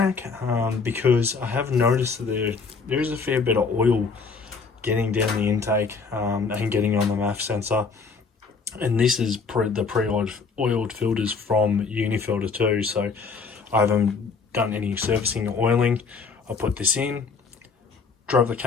because I have noticed that there is a fair bit of oil getting down the intake and getting on the MAF sensor, and this is the pre-oiled filters from UniFilter too, so I haven't done any servicing or oiling. I put this in, drove the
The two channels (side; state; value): right; quieter; 4.9 dB